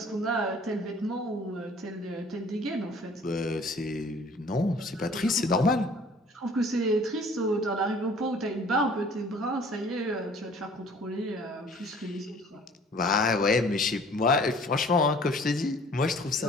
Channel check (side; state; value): both; normal; correlation 0.52